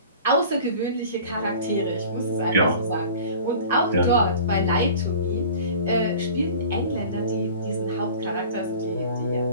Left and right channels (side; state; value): both; inverted; correlation -0.43